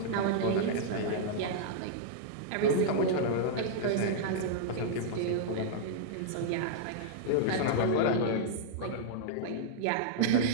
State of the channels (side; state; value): both; different; correlation -0.02